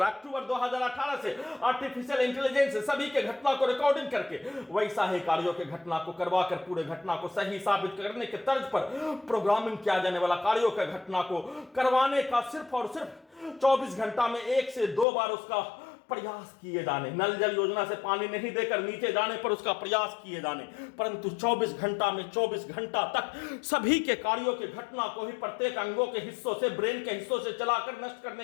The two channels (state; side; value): drops out; right; at 15.1 s